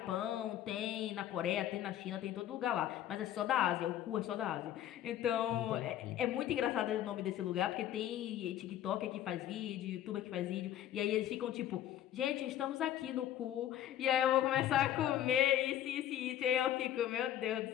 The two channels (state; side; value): quieter; right; 11.7 dB